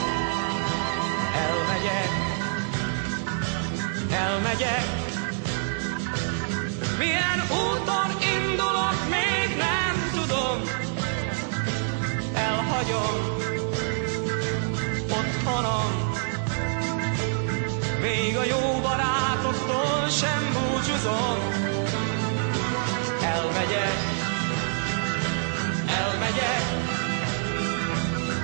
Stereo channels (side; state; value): left; silent; digital silence